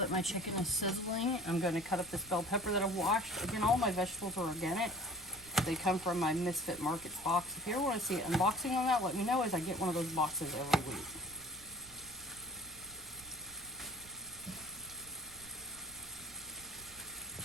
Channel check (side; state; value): right; noise; rumble, 21 dB below the sound